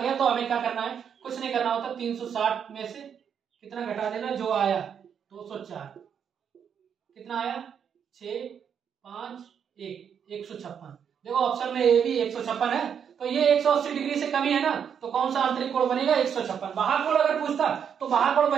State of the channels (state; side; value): quieter; left; 7.7 dB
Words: तो हमें क्या करना है, कुछ नहीं करना होता, 360 में से कितना घटा देना, जो आया 204, कितना आया 6 5 1 156। देखो ऑप्शन में ए भी 156 है, तो ये 180 डिग्री से कमी है ना, तो कौन सा आंतरिक कोण बनेगा, 156। बाह्य कोण अगर पूछता तो बाह्य कोण